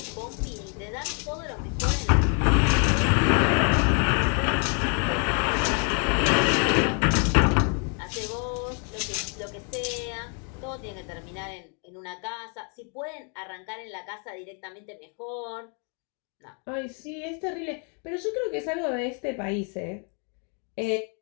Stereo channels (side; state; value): right; quieter; 39.4 dB